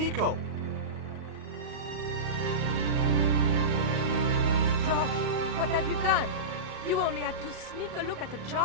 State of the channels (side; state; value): left; late; 38 ms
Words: Georges, what have you done? You only had to sneak a look at the